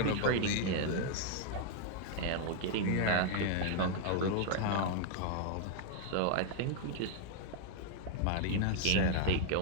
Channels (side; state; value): both; different; correlation 0.00